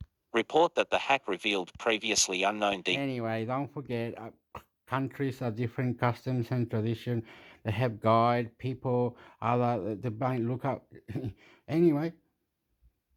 Report that the hack revealed previously unknown Anyway, don't forget, countries are different customs and tradition. They have guide people, other they might look up. Anyway,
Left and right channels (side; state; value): both; identical; correlation 1.00